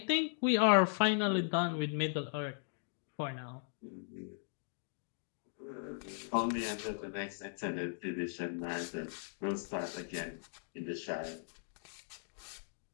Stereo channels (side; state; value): right; silent; digital silence